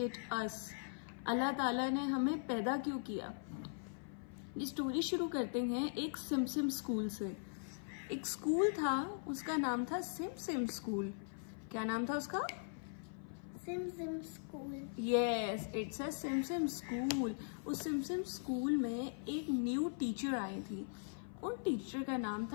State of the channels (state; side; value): silent; right; 51 dB below the other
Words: us. Allah ताला ने हमें पैदा क्यों किया। ये स्टोरी शुरू करते हैं एक सिम स्कूल से। एक स्कूल था, उसका नाम था सिम स्कूल। क्या नाम था उसका? SIM school. Yes, it's a SIM school. उस सिम स्कूल में एक न्यू टीचर आई थी। उन टीचर का नाम